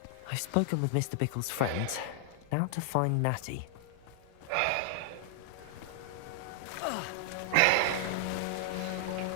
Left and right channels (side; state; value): both; different; correlation 0.00